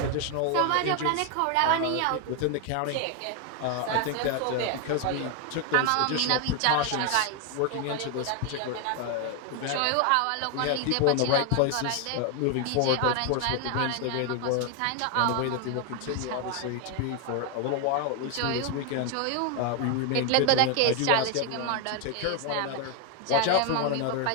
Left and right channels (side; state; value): both; different; correlation 0.01